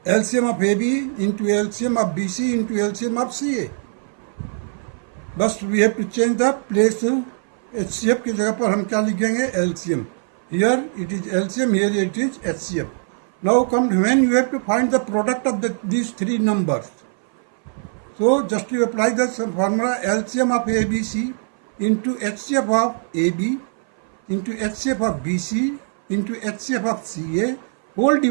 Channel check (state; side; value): silent; left; 58 dB below the other